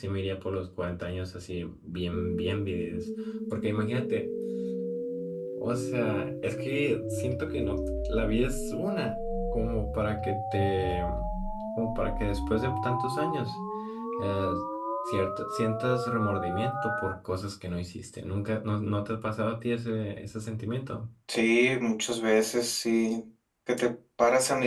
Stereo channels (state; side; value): identical; both; correlation 1.00